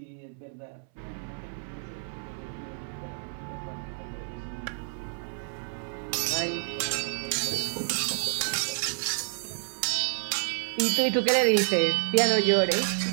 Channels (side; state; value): left; silent; 58 dB below the other